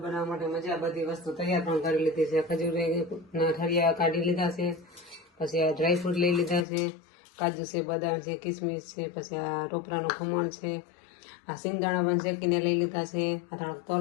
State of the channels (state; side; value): drops out; right; at 6.7 s